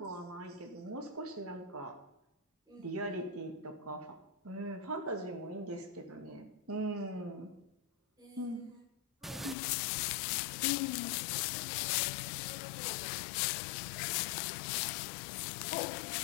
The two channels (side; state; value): right; drops out; at 9.6 s